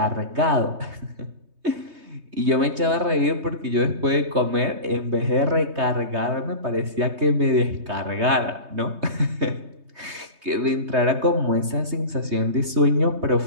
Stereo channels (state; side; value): late; left; 3.2 ms